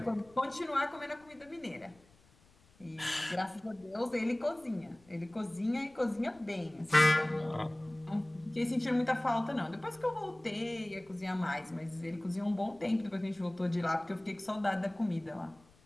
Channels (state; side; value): noise; left; rumble, 29 dB below the sound